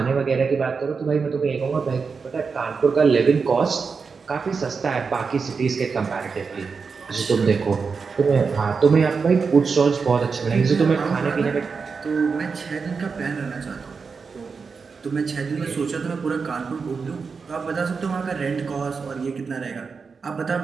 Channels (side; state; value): left; quieter; 5.2 dB